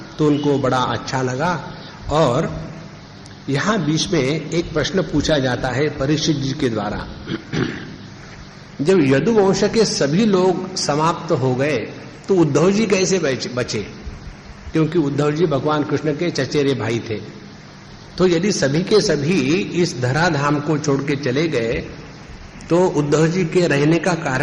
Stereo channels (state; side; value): identical; both; correlation 1.00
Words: तो उनको बड़ा अच्छा लगा। और यहां बीच में एक प्रश्न पूछा जाता है परीक्षित जी के द्वारा। जब यदुवंश के सभी लोग समाप्त हो गए तो उद्धव जी कैसे बचे? क्योंकि उद्धव जी भगवान कृष्ण के चचेरे भाई थे। तो यदि सभी के सभी इस धराधाम को छोड़ के चले गए तो उद्धव जी के रहने का